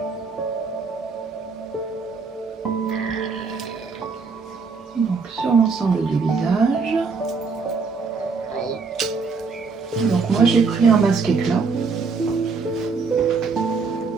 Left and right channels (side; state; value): left; quieter; 4.8 dB